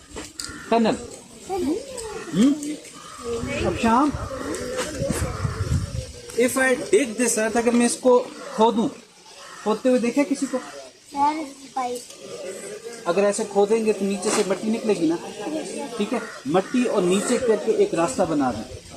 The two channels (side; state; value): both; identical; correlation 1.00